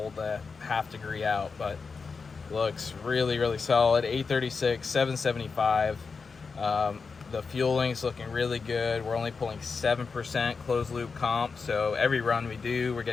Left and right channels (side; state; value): right; quieter; 4.9 dB